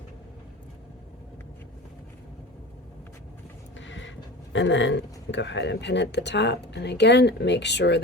And then go ahead and pin at the top, and again make sure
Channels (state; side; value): normal; both; correlation 0.33